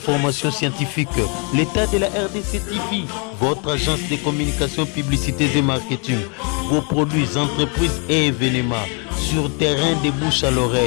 scientifiques. L'état de la RDC TV, votre agence de communication, publicité et marketing. Vos produits, entreprises et événements. Sur terrain de bouche à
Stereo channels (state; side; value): quieter; right; 36.1 dB